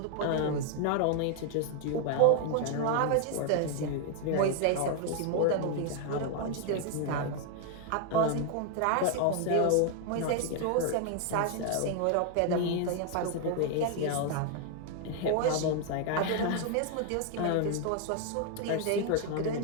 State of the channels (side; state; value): both; different; correlation 0.00